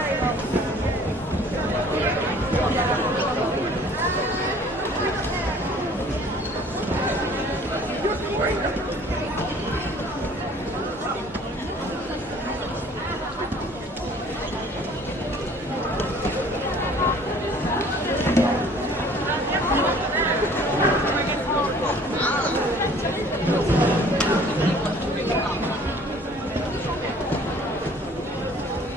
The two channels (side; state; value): both; normal; correlation 0.52